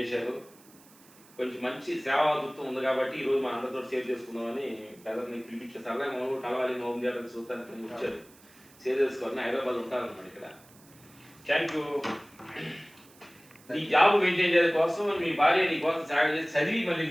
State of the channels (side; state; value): right; noise; hiss, 26 dB below the sound